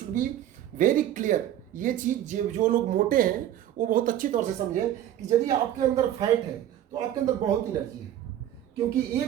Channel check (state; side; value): quieter; left; 11.6 dB